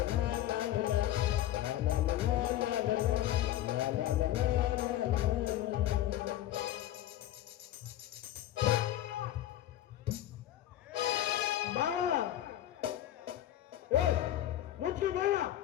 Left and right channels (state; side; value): quieter; right; 13.0 dB